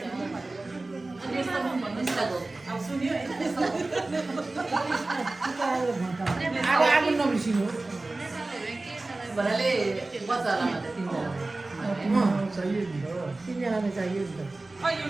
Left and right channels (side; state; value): left; quieter; 3.1 dB